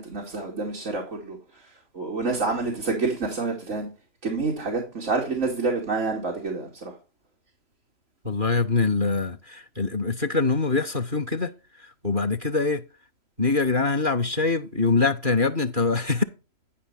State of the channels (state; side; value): late; left; 2.4 ms